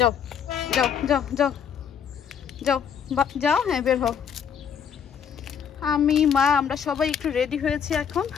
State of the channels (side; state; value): right; quieter; 7.7 dB